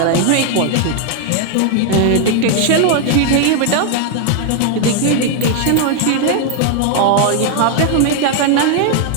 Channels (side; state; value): both; different; correlation 0.00